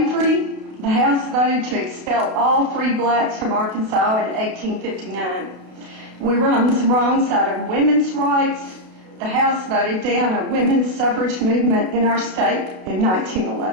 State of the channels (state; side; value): late; left; 32 ms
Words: The House voted to expel all free blacks from Arkansas in 1859. We were on the wrong side of women's rights. The House voted down a women's suffrage movement in our state in